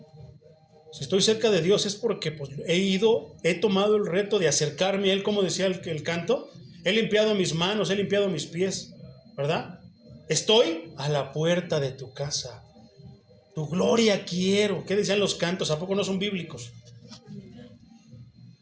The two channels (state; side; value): identical; both; correlation 1.00